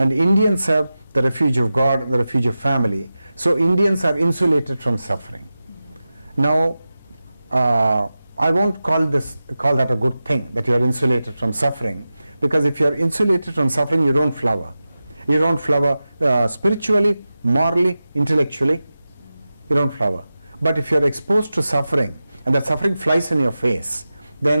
Indians have the refuge of God and the refuge of family. So Indians are insulated from suffering. Now, I won't call that a good thing, that you are insulated from suffering, because if you are insulated from suffering, you don't flower. You don't flower spiritually, morally, intellectually. You don't flower. But if you are exposed to suffering, and that suffering flies in your face,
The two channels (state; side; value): inverted; both; correlation -0.94